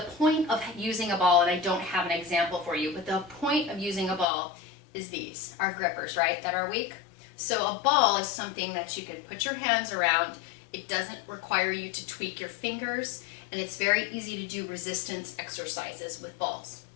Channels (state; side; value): drops out; right; at 4.2 s